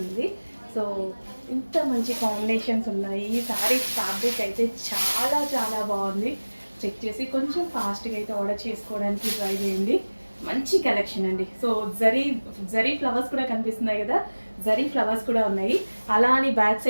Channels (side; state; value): both; inverted; correlation -1.00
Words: సో ఇంత మంచి కాంబినేషన్స్ ఉన్నాయి. ఈ శారీస్ ఫ్యాబ్రిక్ అయితే చాలా చాలా బాగుంది. చెక్ చేసి కొంచెం ఫాస్ట్గా అయితే ఆర్డర్ చేసుకోవడానికి ట్రై చేయండి. మంచి కలెక్షన్ అండి. సో జరీ ఫ్లవర్స్ కూడా కనిపిస్తున్నాయి కదా, జరీ ఫ్లవర్స్ కూడా ఉన్నాయి. అలా అని బ్యాక్